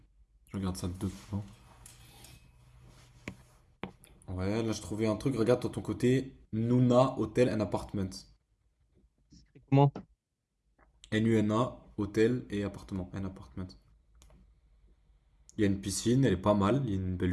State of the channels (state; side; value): identical; both; correlation 1.00